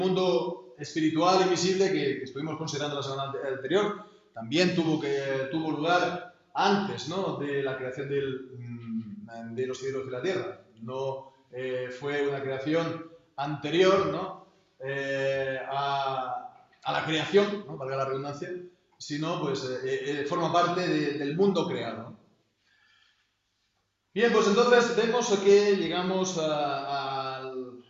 espiritual y visible que estuvimos considerando la semana anterior, también tuvo lugar antes, ¿no?, de la creación de los cielos y la tierra. No fue una creación anterior, ¿no?, a la creación, ¿no?, valga la redundancia, sino pues forma parte del mundo creado. Bien, pues entonces vemos que llegamos a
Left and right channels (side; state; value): both; identical; correlation 1.00